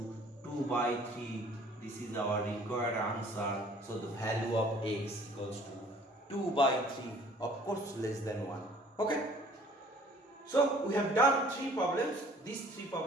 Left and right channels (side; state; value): both; normal; correlation 0.54